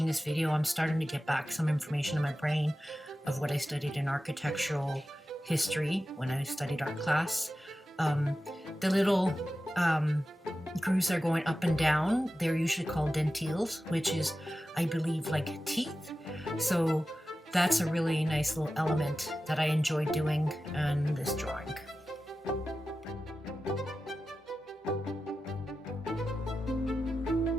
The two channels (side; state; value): both; normal; correlation 0.93